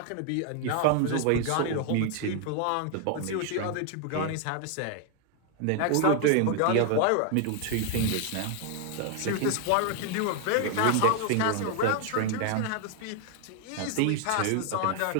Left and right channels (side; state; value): both; different; correlation 0.00